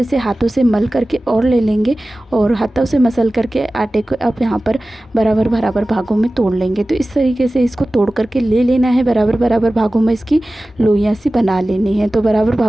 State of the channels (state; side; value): normal; both; correlation 0.96